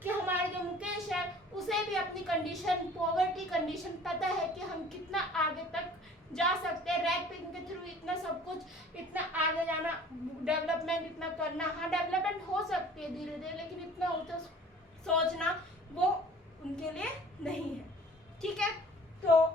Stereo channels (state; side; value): normal; both; correlation 0.48